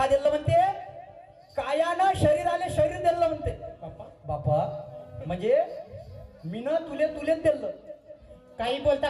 दिलं म्हणते, कायानं शरीराले शरीर दिलं म्हणते. बाप्पा बापा म्हणजे मीनं तुलेच दिलं. काही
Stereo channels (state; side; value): identical; both; correlation 1.00